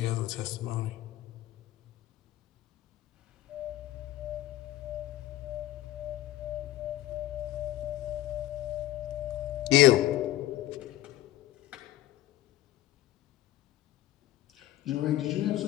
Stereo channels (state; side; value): quieter; right; 14.7 dB